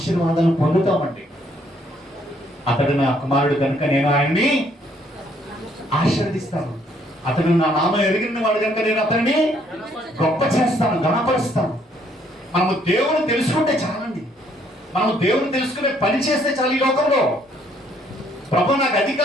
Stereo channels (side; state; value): both; normal; correlation 0.67